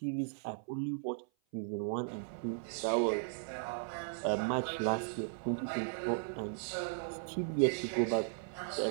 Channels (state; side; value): silent; left; 53 dB below the other